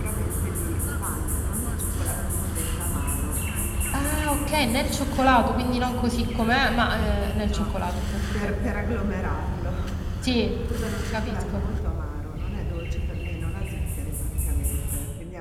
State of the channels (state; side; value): identical; both; correlation 1.00